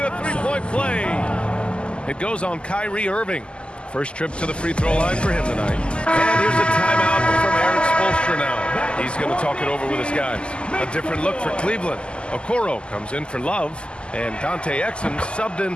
a three-point play. It goes on Kyrie Irving. First trip to the free throw line for him tonight. And here's a timeout from Eric Spoelstra now. He's going to talk it over with his guys. A different look for Cleveland. Okoro comes in for Love. And Dante Exum subbed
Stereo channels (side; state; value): right; late; 0.051 ms